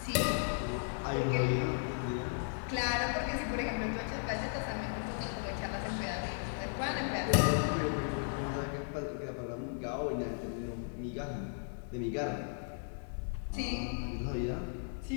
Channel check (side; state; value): right; silent; digital silence